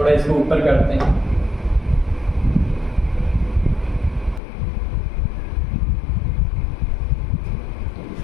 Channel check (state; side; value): drops out; right; at 4.4 s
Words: इसको ऊपर करते हैं।